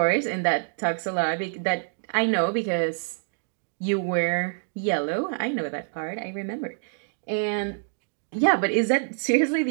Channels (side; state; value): left; silent; digital silence